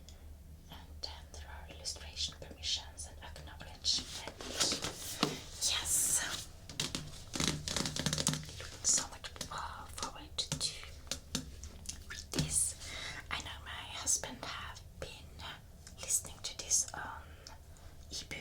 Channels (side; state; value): both; identical; correlation 1.00